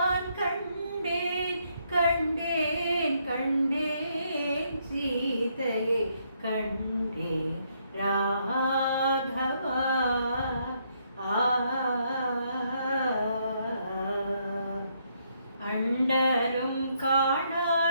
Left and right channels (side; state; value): both; inverted; correlation -0.73